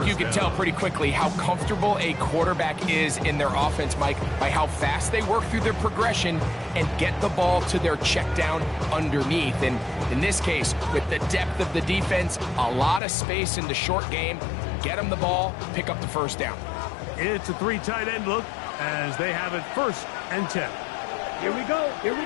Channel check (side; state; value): right; drops out; at 13.0 s